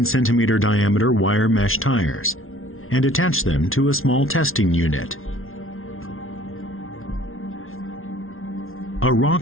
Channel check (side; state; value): right; late; 0.61 ms